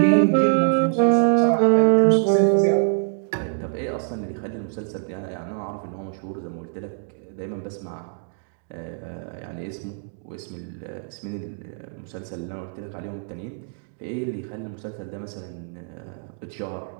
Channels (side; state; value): left; silent; digital silence